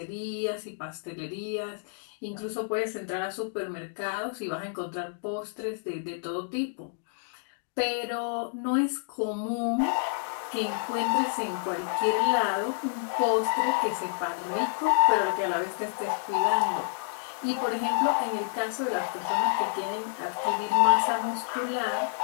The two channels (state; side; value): silent; right; digital silence